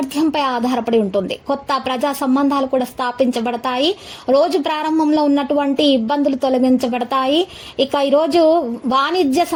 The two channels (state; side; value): identical; both; correlation 1.00